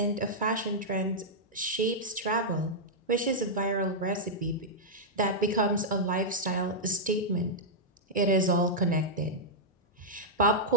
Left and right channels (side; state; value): both; normal; correlation -0.07